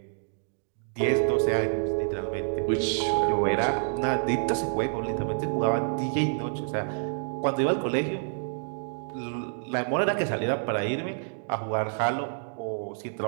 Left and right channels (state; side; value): silent; left; digital silence